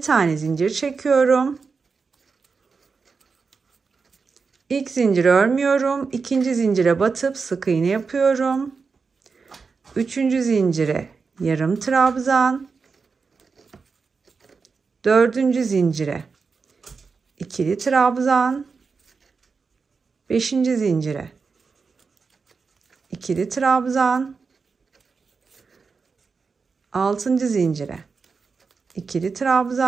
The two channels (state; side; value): quieter; left; 4.9 dB